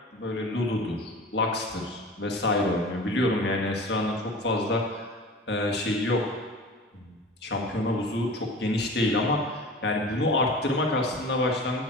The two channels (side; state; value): both; normal; correlation 0.38